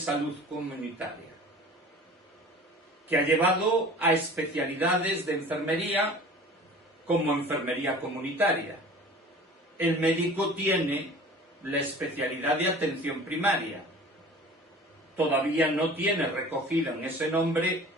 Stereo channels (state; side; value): normal; both; correlation 0.43